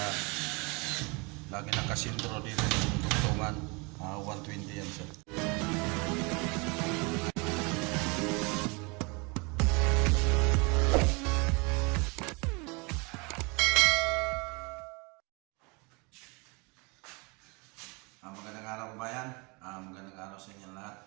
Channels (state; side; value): quieter; left; 29.3 dB